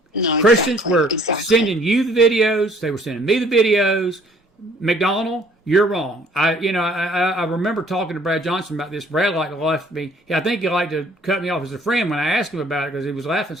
No, Christians were sending you the videos. They were sending me the videos. McDonald, you're wrong. I remember talking to Brad Johnson about this. Brad left me. I think he liked to cut me off as a friend when I asked him about it because he was laughing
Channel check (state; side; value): normal; both; correlation 0.58